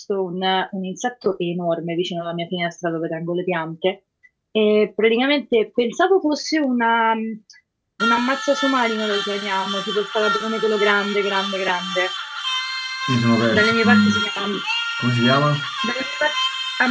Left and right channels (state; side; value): identical; both; correlation 1.00